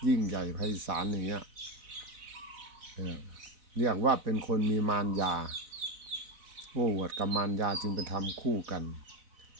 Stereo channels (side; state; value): left; late; 4.0 ms